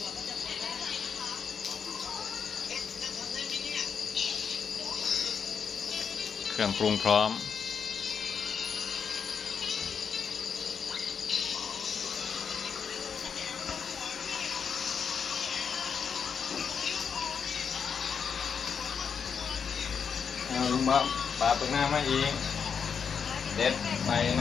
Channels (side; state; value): right; quieter; 6.7 dB